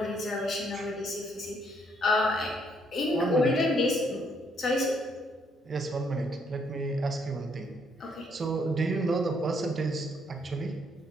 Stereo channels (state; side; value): normal; both; correlation 0.70